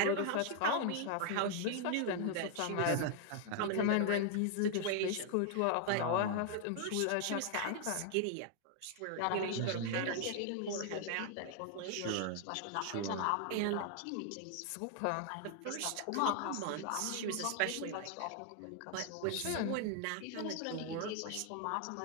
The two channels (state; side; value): different; both; correlation 0.00